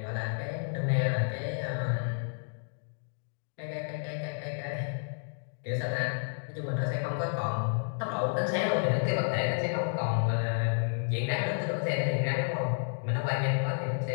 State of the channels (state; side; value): silent; right; digital silence